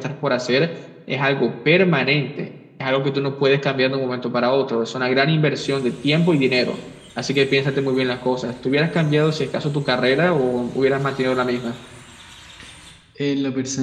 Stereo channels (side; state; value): both; identical; correlation 1.00